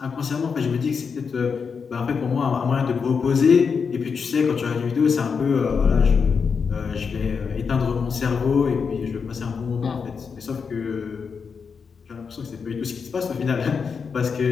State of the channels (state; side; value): quieter; right; 5.8 dB